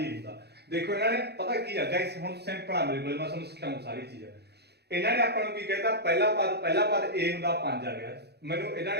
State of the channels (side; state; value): left; late; 0.48 ms